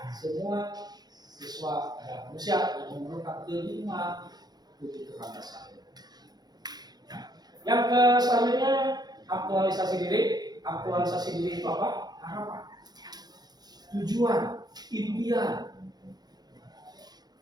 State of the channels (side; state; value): left; late; 0.19 ms